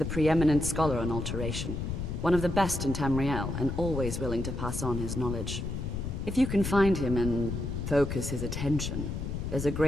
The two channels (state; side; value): noise; left; rumble, 4 dB below the sound